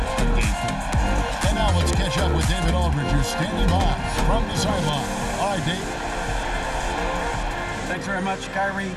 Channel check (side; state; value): both; identical; correlation 1.00